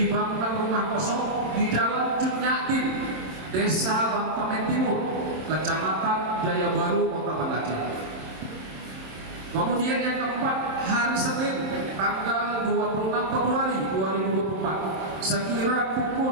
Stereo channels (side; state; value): left; late; 27 ms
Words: rumah kosong di Jalan Cunyatin, Desa Bantamen Timur, Kecamatan Jaya Baru, Kota Banda Aceh. Kemudian yang keempat, hari Senin tanggal 26 Februari 2024 sekira